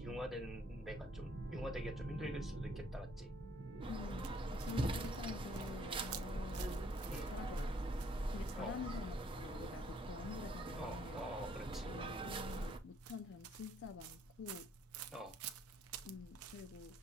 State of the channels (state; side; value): normal; both; correlation 0.66